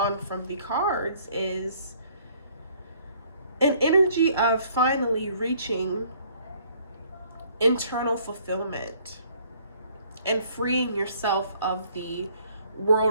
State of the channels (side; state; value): both; inverted; correlation -0.61